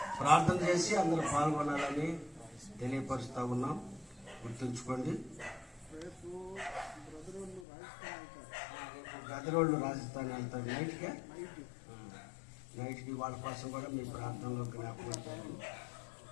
ప్రార్థన చేసి అందరూ పాల్గొనాలని తెలియపరుస్తూ ఉన్నాం. గుర్తుంచుకోండి. రేపు గదరోళ్ళు రాజస్థాన్ వెళ్తారు నైట్కి వాళ్ళ కోసం కూడా మీ ప్రార్థనలో జ్ఞాపకం చేద్దాం.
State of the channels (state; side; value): drops out; right; at 7.7 s